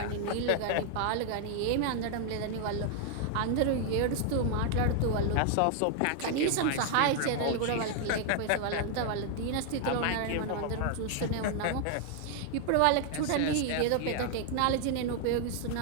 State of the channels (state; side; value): different; both; correlation 0.00